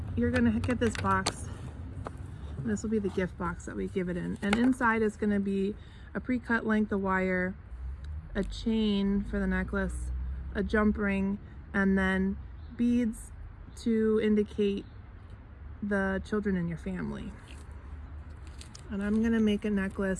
you're gonna get this box. This will be the gift box that we give it in. And inside is gonna be a pre-cut length of wire, a chain for the necklace, a jump ring, and then beads to indicate the children in your family. And I'm gonna make a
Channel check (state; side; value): identical; both; correlation 1.00